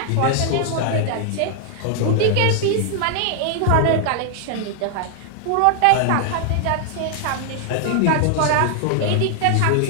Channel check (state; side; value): different; both; correlation 0.00